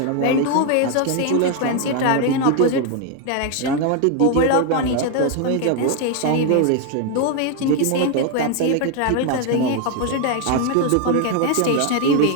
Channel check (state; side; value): different; both; correlation 0.01